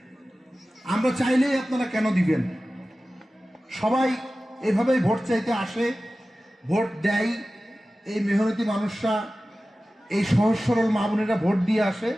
আমরা চাইলেই আপনারা কেন দিবেন? সবাই এভাবেই ভোট চাইতে আসে, ভোট দেয়। এই মেহনতি মানুষরা, এই সহজ সরল মা বোনেরা ভোট দিয়ে আসে,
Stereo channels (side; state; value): both; normal; correlation 0.96